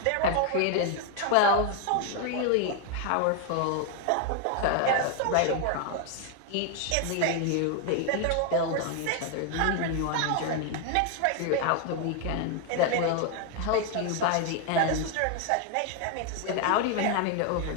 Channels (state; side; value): different; both; correlation 0.01